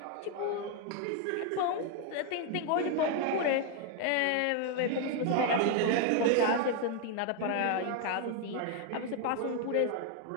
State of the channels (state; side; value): different; both; correlation 0.01